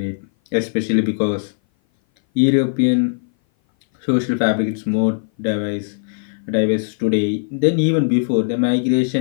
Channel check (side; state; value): right; silent; 58 dB below the other